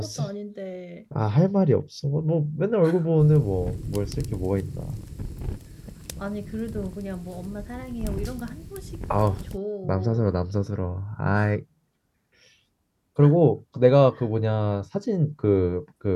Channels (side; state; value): both; identical; correlation 1.00